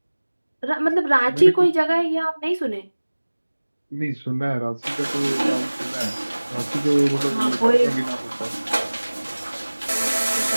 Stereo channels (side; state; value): both; inverted; correlation -1.00